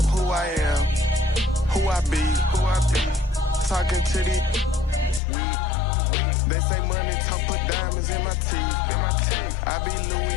who I am, who I be. Talking to the weed. They say money talk, put diamonds in my teeth. I be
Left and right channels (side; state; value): right; drops out; at 5.2 s